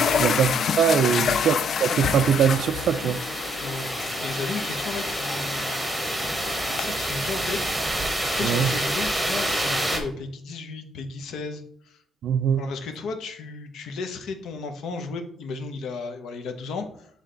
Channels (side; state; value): both; normal; correlation 0.70